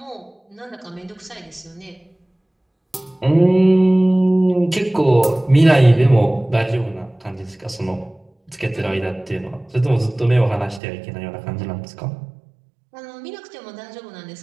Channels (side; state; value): left; drops out; at 10.8 s